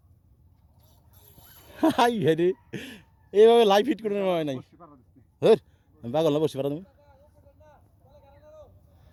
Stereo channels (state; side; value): identical; both; correlation 1.00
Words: হাই হেরে এইভাবে লাইভ হিট করে নেওয়া হয় নাই হ্যাঁ আমি পাগল না বসে পারা তুমি